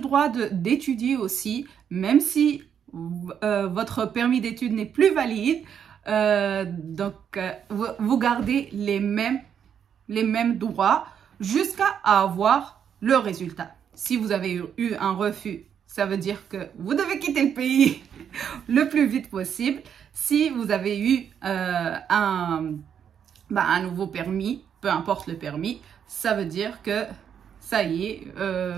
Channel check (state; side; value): quieter; left; 8.2 dB